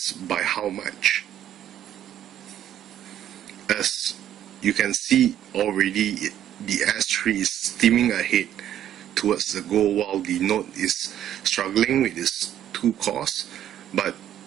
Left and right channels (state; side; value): quieter; left; 11.1 dB